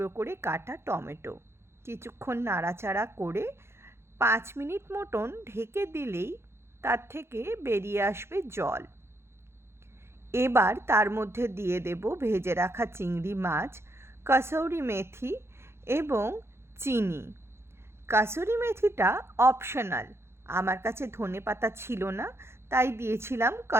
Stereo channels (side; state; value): left; late; 0.12 ms